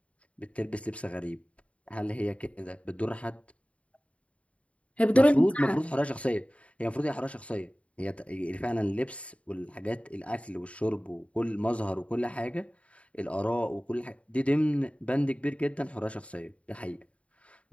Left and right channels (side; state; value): right; late; 0.064 ms